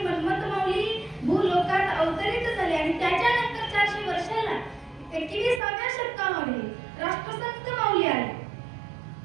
मन्मथ मौली भूलोकात अवतरित झाले आणि त्याच्यानंतर 400 वर्षाला 21व्या शतकामध्ये राष्ट्रसंत मौली आले.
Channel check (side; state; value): left; drops out; at 5.6 s